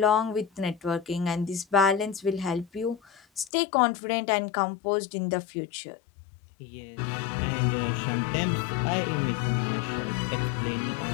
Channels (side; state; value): right; drops out; at 3.5 s